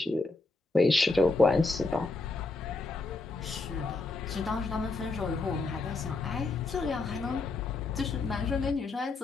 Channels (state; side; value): quieter; right; 3.6 dB